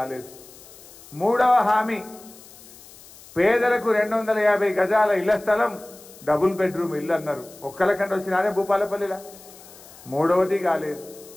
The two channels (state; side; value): noise; left; hiss, 21 dB below the sound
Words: మూడవ హామీ, పేదలకు 250 గజాల ఇళ్ల స్థలం, డబుల్ బెడ్రూమ్ ఇల్లు అన్నారు. ఒక్కలకంటే వచ్చినారే భూపాలపల్లిలా. మూడవది కాలేదు.